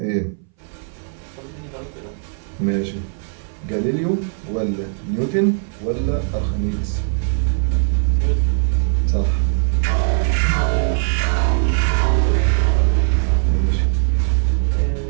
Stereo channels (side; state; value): left; silent; 62 dB below the other